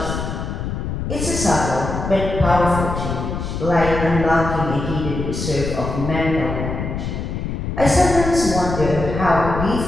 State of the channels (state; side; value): noise; left; rumble, 4 dB below the sound